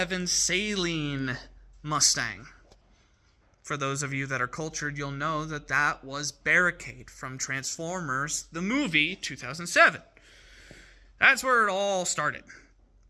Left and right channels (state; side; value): identical; both; correlation 1.00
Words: Saleen Mustang. For those of you that are cultured, you'll know that that was Barricade from Transformers, the movie 2007. That's where it all started.